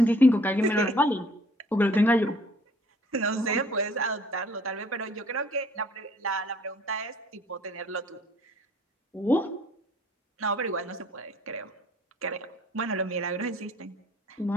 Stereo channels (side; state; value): both; normal; correlation 0.57